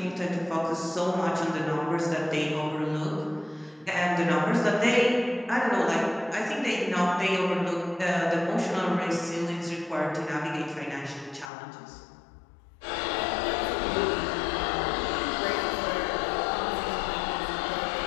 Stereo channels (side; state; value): right; drops out; at 11.5 s